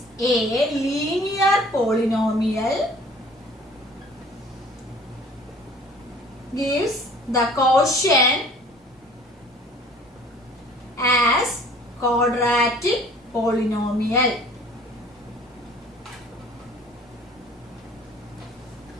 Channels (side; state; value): both; normal; correlation 0.51